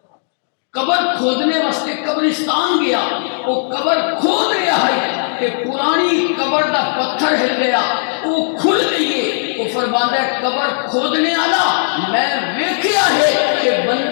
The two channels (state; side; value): silent; right; digital silence